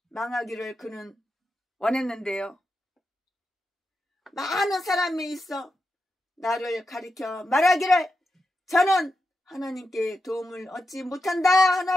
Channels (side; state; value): both; normal; correlation 0.88